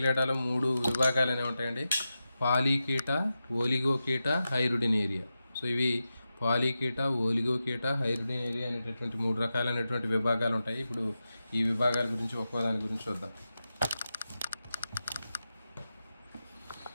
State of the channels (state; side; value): inverted; both; correlation -0.91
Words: 3 విభాగాలు అనేవి ఉంటాయండి. పాలీకీట, ఓలిగోకీట, హైరుడినేరియా. సో ఇవి పాలీకీట, ఓలిగోకీట, హైరుడినేరియా అనేటటువంటి 3 రకాలైనటువంటి విభాగాలు ఉంటాయి. ఇప్పుడు ఈ విభాగాల గురించి ఒక్కో దాని గురించి చూద్దాం.